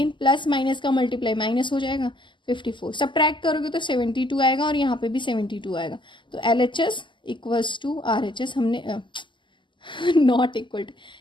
प्लस माइनस का मल्टीप्लाई माइनस हो जाएगा 54, सब्ट्रैक्ट करोगे तो 72 आएगा और यहाँ पे भी 72 आएगा। तो LHS इक्वल्स टू RHS, हमने नॉट इक्वल टू,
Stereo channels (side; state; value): right; late; 0.24 ms